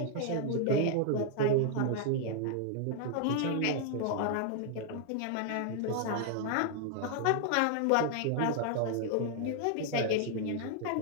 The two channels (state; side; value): different; both; correlation 0.00